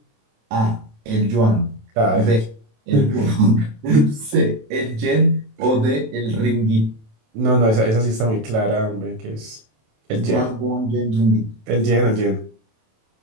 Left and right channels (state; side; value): late; left; 27 ms